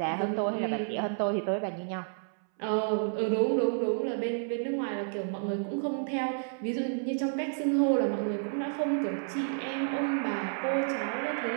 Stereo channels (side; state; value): left; silent; 57 dB below the other